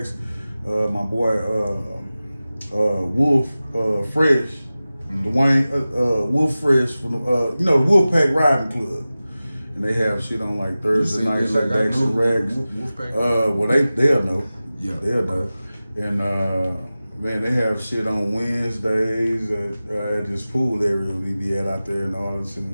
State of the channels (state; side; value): inverted; both; correlation -0.96